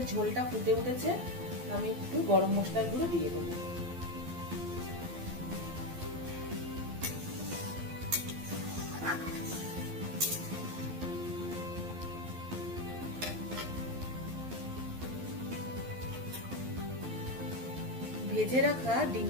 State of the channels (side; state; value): left; late; 12 ms